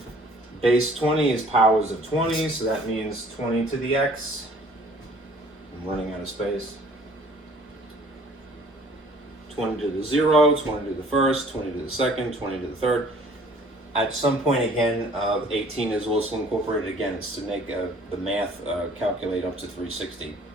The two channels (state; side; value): normal; both; correlation 0.54